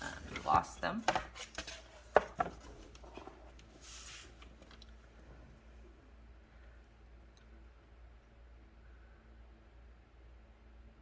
you lost them.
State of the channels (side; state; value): both; identical; correlation 1.00